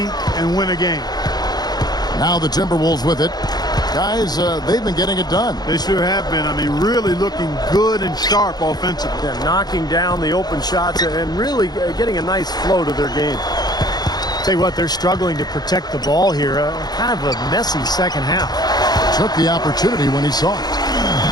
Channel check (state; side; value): late; right; 0.19 ms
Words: and win a game. Now the Timberwolves with it. Guys, they've been getting it done. They sure have been. I mean, really looking good and sharp offensively. Yeah, knocking down the open shots and really getting a nice flow to their game. Tell you what, they're struggling to protect the ball here. Kind of a messy second half. Took the opportunity when he saw it.